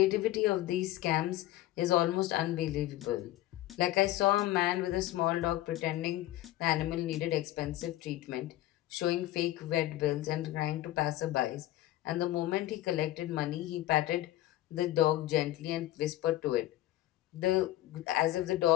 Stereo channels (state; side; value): quieter; right; 15.1 dB